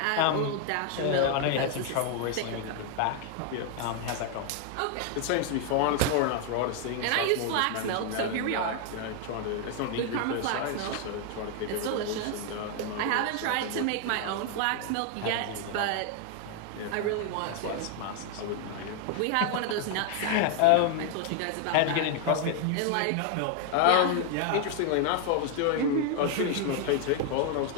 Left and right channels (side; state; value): both; different; correlation 0.00